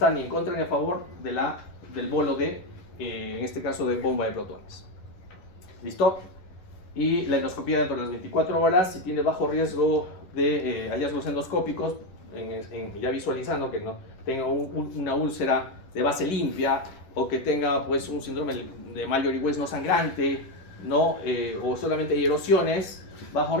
ni en contra ni a favor del bolo en este caso de bomba de protones. ¿Listo? Y la endoscopía dentro de las 24 horas, si tiene bajo riesgo de hallazgos endoscópicos, ya visualizando que no tenga una úlcera de base limpia o que tenga pues un síndrome de Mallory-Weiss no sangrante, ¿no? O solamente hay erosiones, bajo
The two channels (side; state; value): right; late; 11 ms